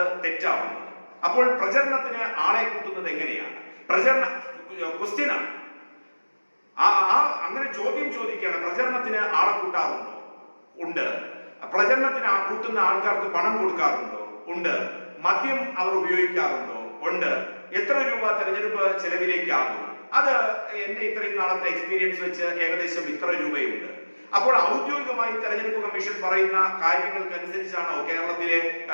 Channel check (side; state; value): both; inverted; correlation -1.00